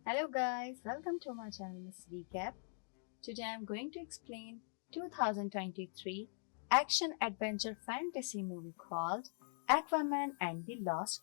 Hello guys, welcome to my channel Missrecap. Today I'm going to explain 2023 action adventure fantasy movie called Aquaman and the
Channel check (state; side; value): silent; right; digital silence